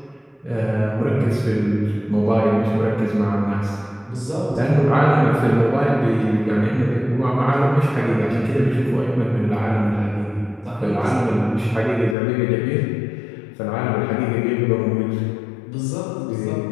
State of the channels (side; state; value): right; drops out; at 12.2 s